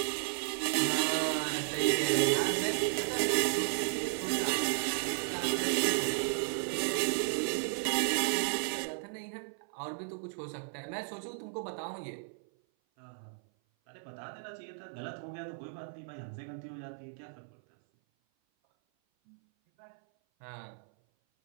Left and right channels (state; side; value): silent; left; 55 dB below the other